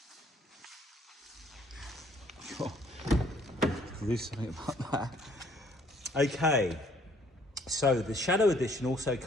Do something about that. Okay, so the Shadow Edition also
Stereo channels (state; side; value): normal; both; correlation 0.62